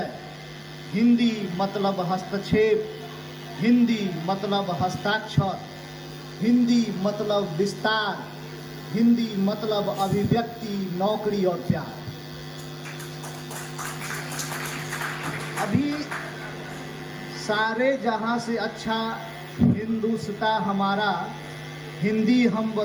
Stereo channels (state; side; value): identical; both; correlation 1.00